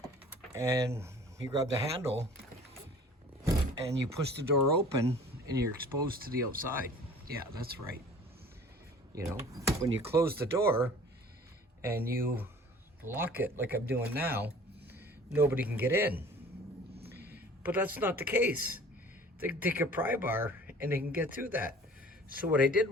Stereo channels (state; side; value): normal; both; correlation 0.48